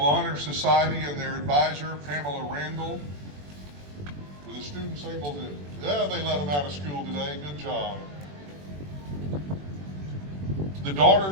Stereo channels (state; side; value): late; left; 21 ms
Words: Society and their advisor, Pamela Randall. Were the students able to, yeah, they let them out of school today. Good job. The